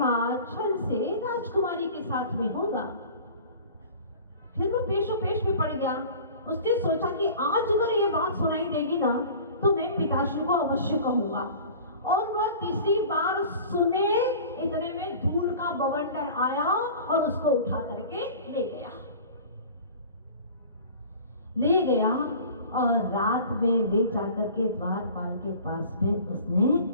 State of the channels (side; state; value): both; inverted; correlation -0.42